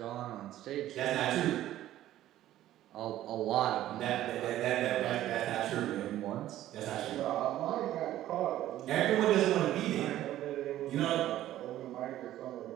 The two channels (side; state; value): left; quieter; 13.5 dB